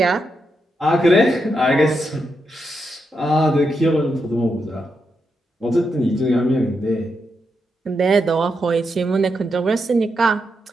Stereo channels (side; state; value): both; normal; correlation 0.83